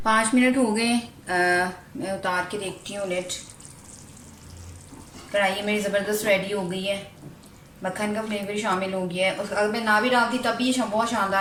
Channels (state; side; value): identical; both; correlation 1.00